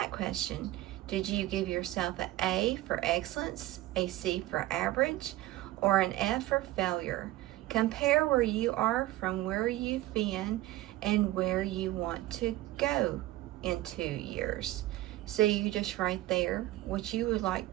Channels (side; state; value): left; quieter; 16.2 dB